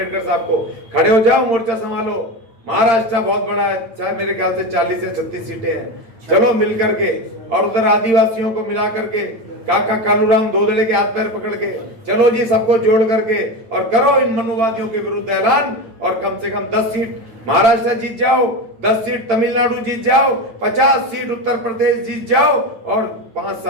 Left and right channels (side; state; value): left; late; 9.1 ms